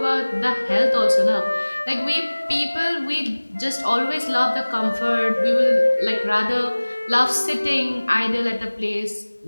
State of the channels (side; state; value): both; inverted; correlation -1.00